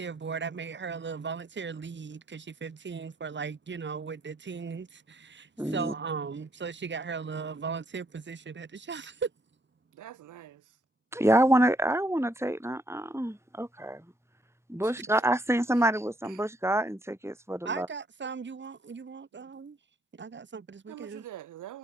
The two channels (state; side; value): normal; both; correlation 0.70